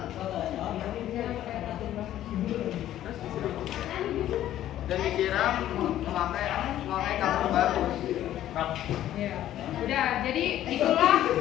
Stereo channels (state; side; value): quieter; right; 12.5 dB